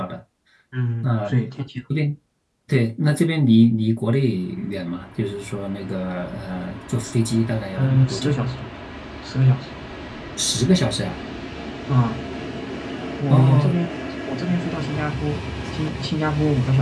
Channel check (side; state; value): both; identical; correlation 1.00